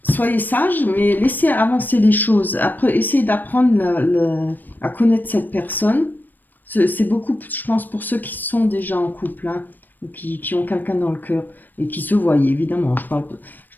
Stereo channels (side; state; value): right; late; 0.089 ms